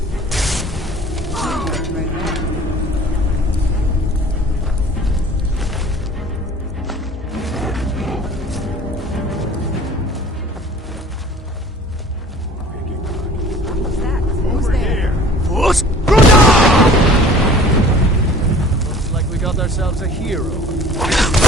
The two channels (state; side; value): normal; both; correlation 0.48